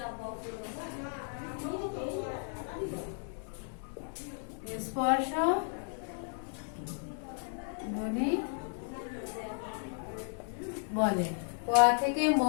স্পর্শ ধ্বনি বলে। ক থেকে ম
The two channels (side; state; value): right; silent; 55 dB below the other